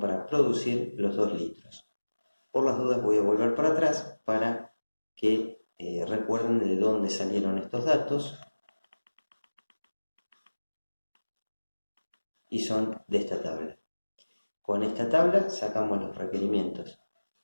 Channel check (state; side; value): inverted; both; correlation -1.00